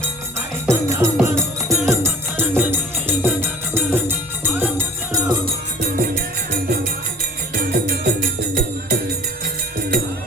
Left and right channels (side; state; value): both; normal; correlation 0.46